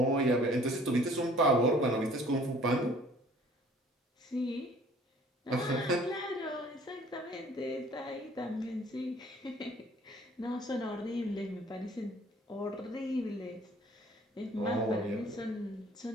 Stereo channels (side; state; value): both; normal; correlation 0.54